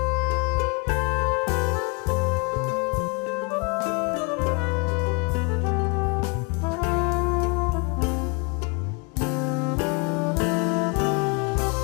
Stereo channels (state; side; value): quieter; right; 32.6 dB